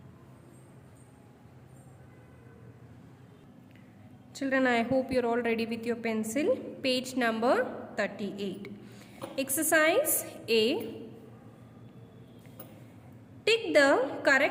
Children, I hope you are all ready with your pencil. Page number 38. Exercise A. Tick the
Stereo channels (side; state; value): both; identical; correlation 1.00